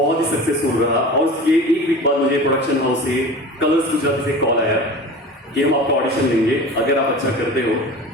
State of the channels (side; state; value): both; normal; correlation 0.35